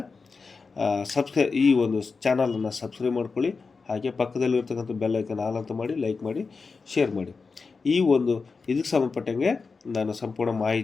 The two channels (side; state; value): right; quieter; 4.6 dB